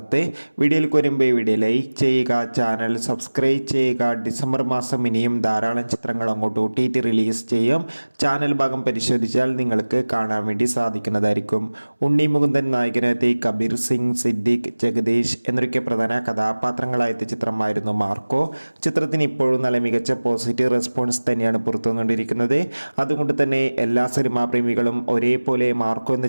വീഡിയോയിൽ വരുമ്പോൾ വീഡിയോ ലൈക്ക് ചെയ്യുക, ചാനൽ സബ്സ്ക്രൈബ് ചെയ്യുക. ഡിസംബർ മാസം ഇനിയും ധാരാളം ചിത്രങ്ങൾ അങ്ങോട്ട് OTT റിലീസ് ചെയ്യും. ചാനൽ ഭാഗം പരിശോധിച്ചാൽ നിങ്ങൾക്ക് കാണാൻ വേണ്ടി സാധിക്കുന്നതായിരിക്കും. ഉണ്ണി മുകുന്ദൻ നായകനെത്തി, കബീർ സിംഗ്, സിദ്ദിഖ്, ജഗദീഷ് എന്നൊക്കെ പ്രധാന കഥാപാത്രങ്ങളായെത്തിയ ചിത്രമായിരുന്നു മാർക്കോ. ചിത്രത്തിന് ഇപ്പോഴും നല്ല മികച്ച പോസിറ്റീവ് റെസ്പോൺസ് തന്നെയാണ് പുറത്തുവന്നുകൊണ്ടിരിക്കുന്നത്. അതുകൊണ്ട് തന്നെ എല്ലാ സിനിമാ പ്രേമികളും ഒരേപോലെ മാർക്കോ എന്ന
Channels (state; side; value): inverted; both; correlation -1.00